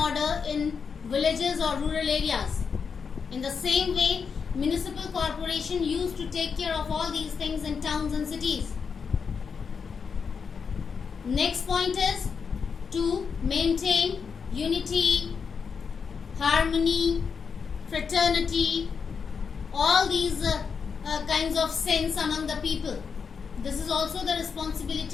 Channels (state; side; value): quieter; right; 5.9 dB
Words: in villages or rural areas. In the same way, municipal corporation used to take care of all these things in towns and cities. Next point is to maintain unity, harmony, fraternity, all these kinds of sense among the people. This is also the